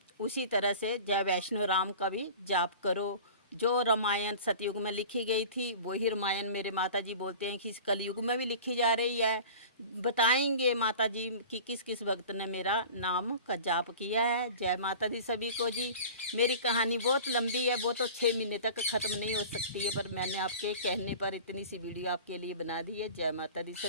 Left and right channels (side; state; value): both; inverted; correlation -0.39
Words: उसी तरह से जय वैष्णो राम का भी जाप करो। जो रामायण सतयुग में लिखी गई थी वही रामायण मेरे माता जी बोलते हैं कि इस कलयुग में भी लिखी जा रही है। बताएंगे माता जी कि किस किस भक्त ने मेरा नाम का जाप किया है। जय माता दी सभी को जी। मेरी कहानी बहुत लंबी है, वो तो 6 महीने तक ख़त्म नहीं हो सकती है, पर मैंने आपके कहने पर इतनी सी वीडियो आपके लिए बना दी है। जय माता दी